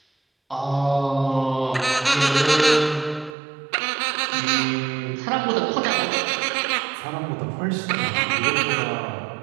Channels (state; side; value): drops out; left; at 3.4 s